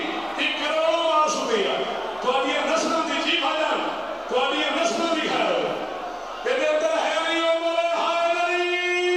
ایک کروڑوں بار شکریہ. تو اب یہ نسلوں دی جی بھاجان تو اب یہ نسلوں دی خیر ہو. تیرے اندر ہے نہیں وہ بولے ہائے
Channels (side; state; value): both; identical; correlation 1.00